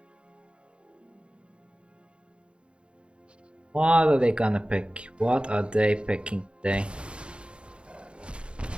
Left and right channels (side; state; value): left; late; 0.057 ms